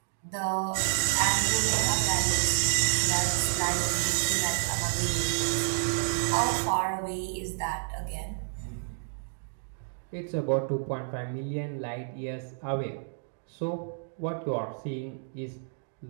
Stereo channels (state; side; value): silent; left; digital silence